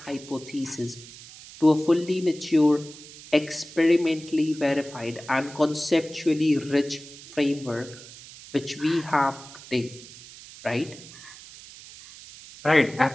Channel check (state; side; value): noise; right; hiss, 17 dB below the sound